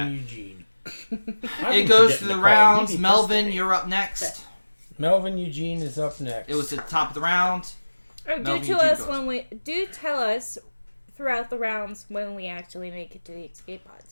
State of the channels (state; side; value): inverted; both; correlation -1.00